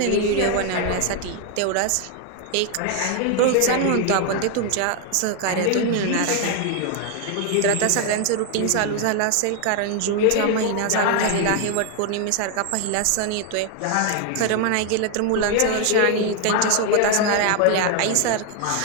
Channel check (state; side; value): different; both; correlation 0.00